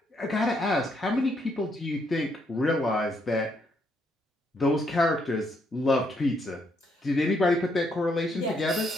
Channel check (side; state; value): both; normal; correlation 0.74